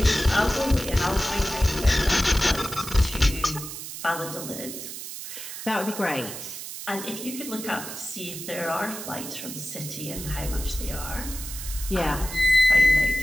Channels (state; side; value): noise; right; hiss, 9 dB below the sound